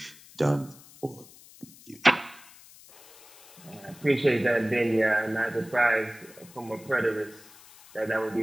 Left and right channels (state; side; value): noise; left; hiss, 22 dB below the sound